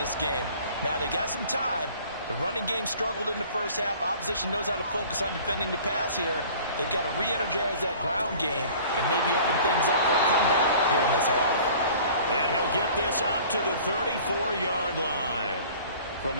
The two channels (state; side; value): inverted; both; correlation -0.47